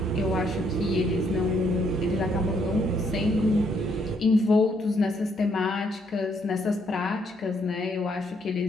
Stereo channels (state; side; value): normal; both; correlation 0.71